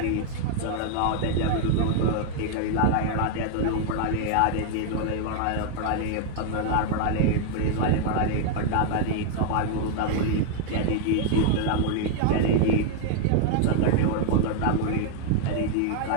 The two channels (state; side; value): different; both; correlation 0.00